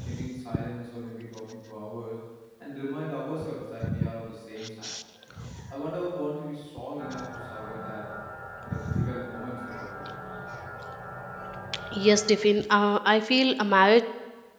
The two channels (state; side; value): identical; both; correlation 1.00